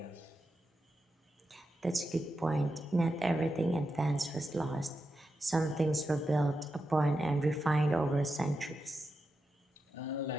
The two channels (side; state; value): both; normal; correlation 0.88